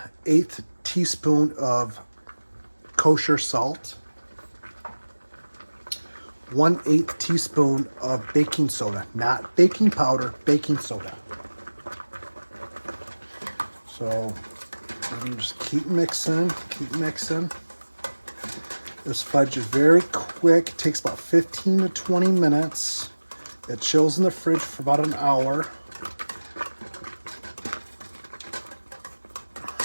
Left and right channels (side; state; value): both; inverted; correlation -1.00